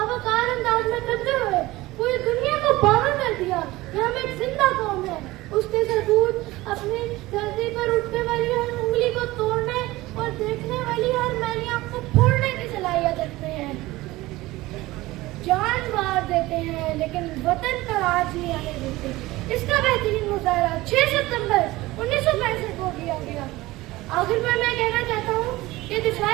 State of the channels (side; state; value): left; quieter; 18.9 dB